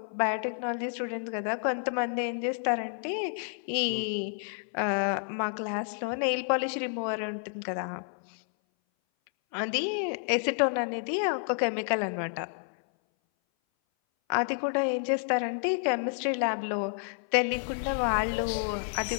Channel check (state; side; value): silent; right; 58 dB below the other